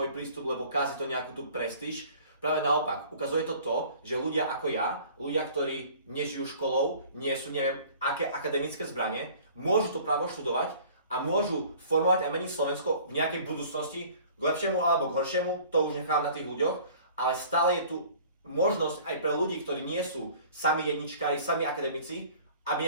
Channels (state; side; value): inverted; both; correlation -0.49